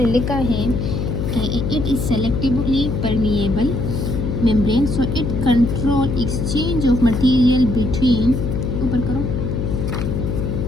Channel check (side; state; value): left; noise; hum, 1 dB below the sound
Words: लिखा है कि it is selectively permeable membrane so it control exchange of material between, ऊपर करो,